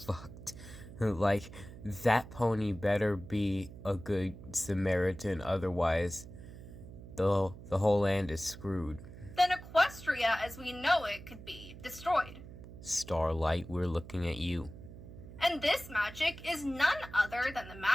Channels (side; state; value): right; noise; hum, 15 dB below the sound